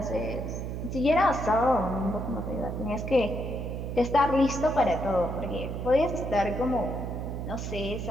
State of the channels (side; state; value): right; noise; hum, 5 dB below the sound